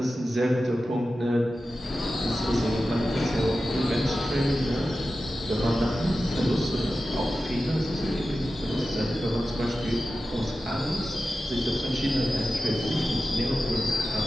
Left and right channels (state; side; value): normal; both; correlation 0.93